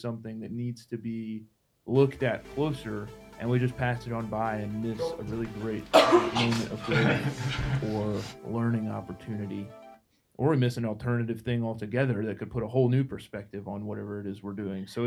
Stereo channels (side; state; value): both; identical; correlation 1.00